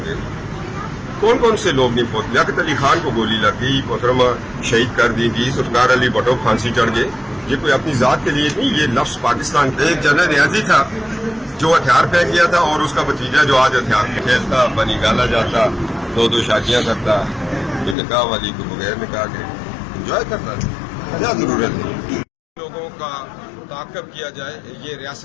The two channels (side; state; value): right; drops out; at 17.9 s